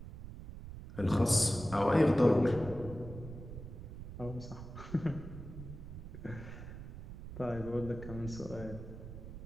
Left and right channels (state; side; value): noise; right; rumble, 11 dB below the sound